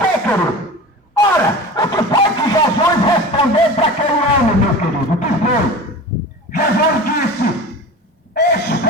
querido? Ora, o que foi que Jesus respondeu para aquele homem, meu querido? O que foi? Jesus disse:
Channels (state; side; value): normal; both; correlation 0.34